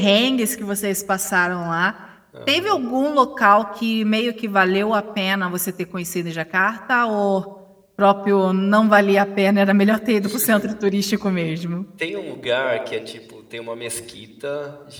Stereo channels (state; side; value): identical; both; correlation 1.00